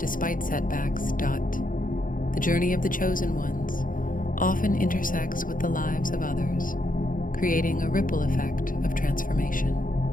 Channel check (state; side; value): late; right; 0.40 ms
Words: setbacks. The journey of the chosen ones often intersects with the lives of others, creating a ripple effect of transformation.